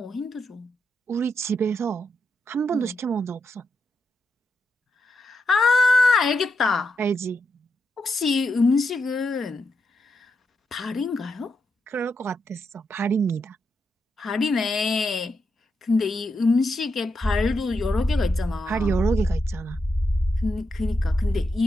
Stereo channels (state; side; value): normal; both; correlation 0.84